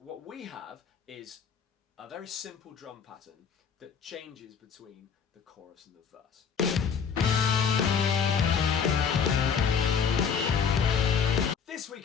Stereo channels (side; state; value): right; quieter; 6.6 dB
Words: we have is a very simple drum pattern that changes between the chorus and the verse. This